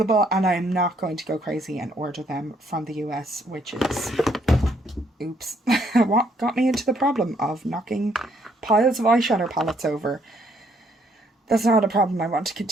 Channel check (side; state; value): both; normal; correlation 0.69